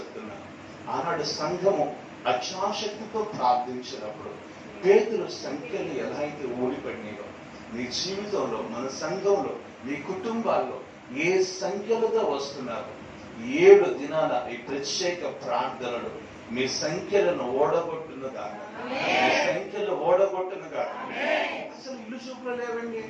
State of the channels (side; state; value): both; identical; correlation 1.00